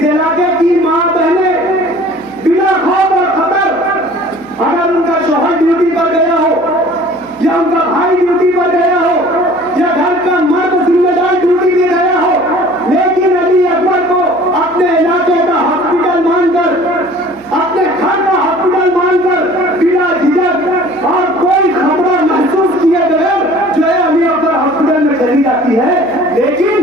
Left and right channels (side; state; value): right; noise; hum, 28 dB below the sound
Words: इलाके की मां बहनें बिना खौफ और खतर, अगर उनका शौहर ड्यूटी पर गया हो या उनका भाई ड्यूटी पर गया हो या घर का मर्द जिम्मेदार ड्यूटी में गया हो, लेकिन अली अकबर को अपने इलाके का हॉस्पिटल मानकर, अपने घर का हॉस्पिटल मानकर बिना झिझक और कोई खतरा महसूस किए बगैर जो है अली अकबर हॉस्पिटल में चली जाती है।